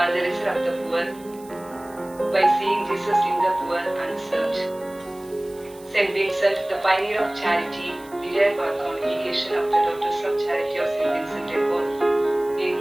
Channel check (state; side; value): noise; right; hiss, 24 dB below the sound